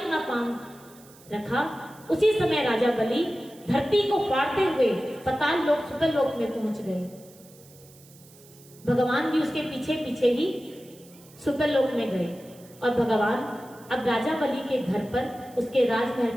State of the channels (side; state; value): right; noise; hiss, 24 dB below the sound